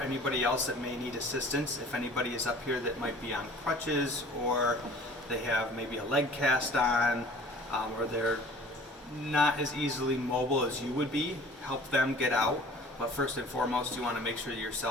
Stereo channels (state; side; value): normal; both; correlation 0.48